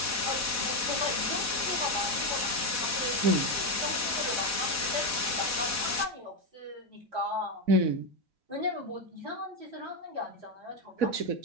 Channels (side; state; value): left; late; 4.1 ms